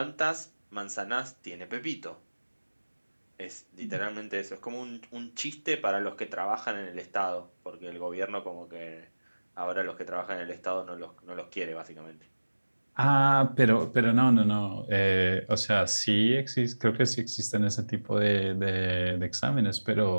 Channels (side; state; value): both; inverted; correlation -1.00